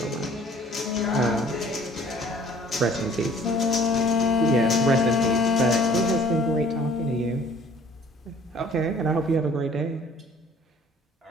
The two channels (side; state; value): both; normal; correlation 0.53